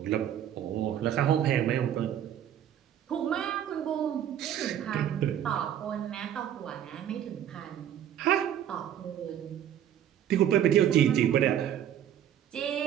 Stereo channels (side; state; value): left; quieter; 10.4 dB